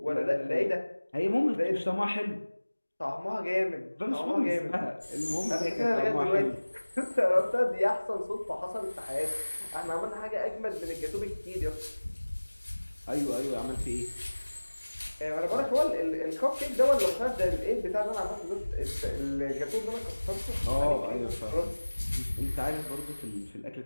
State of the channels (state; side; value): inverted; both; correlation -1.00